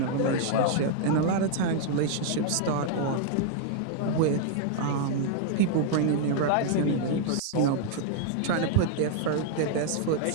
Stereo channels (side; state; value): both; different; correlation -0.01